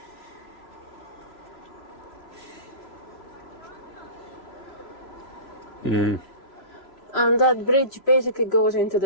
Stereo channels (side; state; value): right; late; 3.0 ms